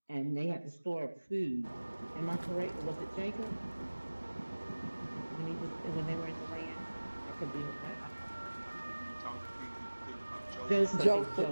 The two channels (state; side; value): inverted; both; correlation -1.00